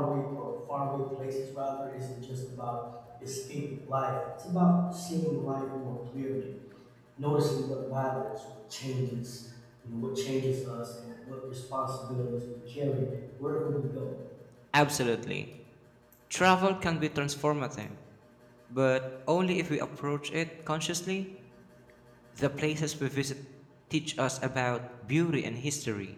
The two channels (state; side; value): identical; both; correlation 1.00